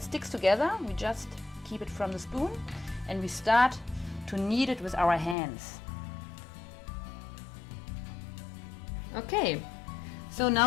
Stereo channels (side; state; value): right; drops out; at 5.4 s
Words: together, we just keep it from the spoon and we start to knead it with our hands. Okay, so